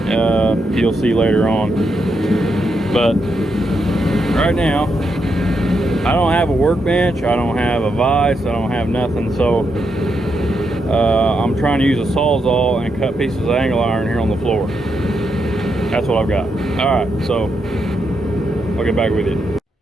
You'll see later on. But right now, I don't have a workbench, I don't have a vise, I don't have nothing. So I'm trying to use a Sawzall and cut pieces of angle iron here on the floor. That's what I've got. All right, so I'll get back with you.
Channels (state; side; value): normal; both; correlation 0.81